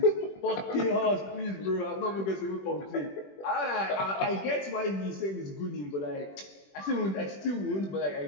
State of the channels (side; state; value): right; late; 21 ms